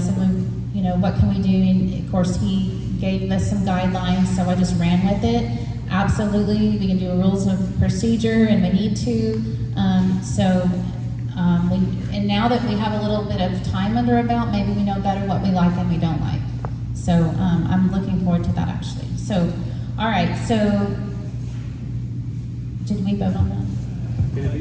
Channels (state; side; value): identical; both; correlation 1.00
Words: what can we do? And of course, he gave us some guidelines, so I just ran with it. Absolutely, we can do a rules of procedure, and we need to. And now that we have a little bit of time under our belt, maybe we know better what we like and we don't like. So I'm looking forward to that, actually. So, all right. So, did we vote on that? Can it be